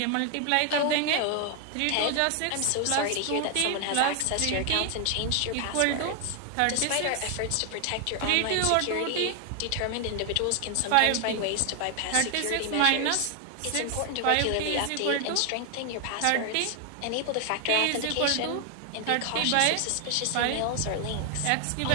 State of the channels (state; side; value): different; both; correlation 0.00